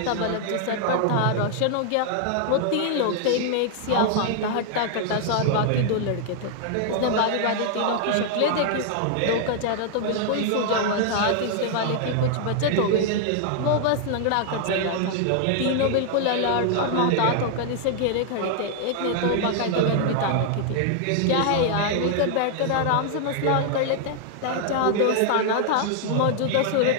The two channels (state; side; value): different; both; correlation 0.00